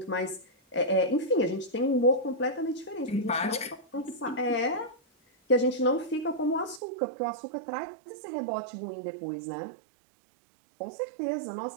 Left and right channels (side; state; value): left; drops out; at 6.8 s